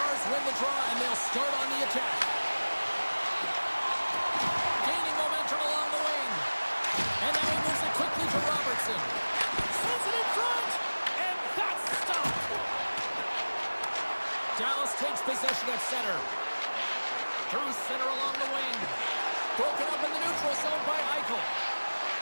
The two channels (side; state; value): both; inverted; correlation -1.00